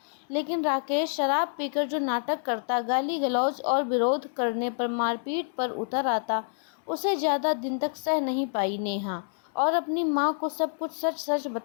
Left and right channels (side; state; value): right; silent; 60 dB below the other